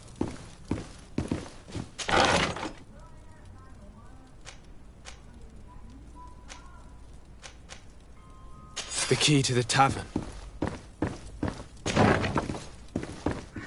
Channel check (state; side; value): identical; both; correlation 1.00